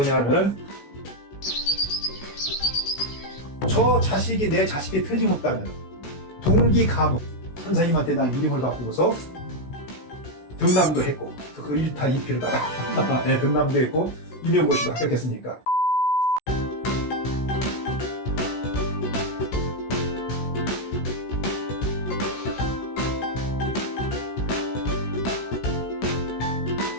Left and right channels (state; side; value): late; right; 16 ms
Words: 저 자식이 내 자식이 틀림없다면 동기가문 선생님한테 난 이름을 바꾸고서 등남도 했고 그 1타 2피를 다 네, 등남도 했고 임용고시도 합격했으니까